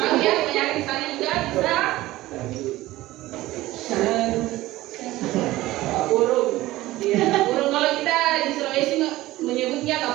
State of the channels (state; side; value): quieter; left; 17.2 dB